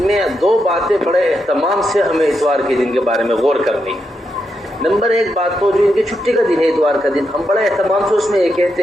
میں 2 باتیں بڑے اہتمام سے ہمیں اتوار کے دن کے بارے میں غور کرنی ہے. نمبر 1 بات تو جو ان کی چھٹی کا دن ہے اتوار کا دن، ہم بڑے اہتمام سے اس میں یہ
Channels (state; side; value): normal; both; correlation 0.83